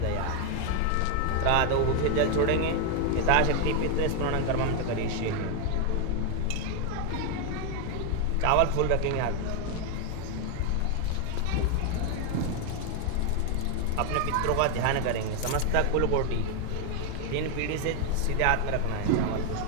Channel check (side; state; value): both; different; correlation 0.01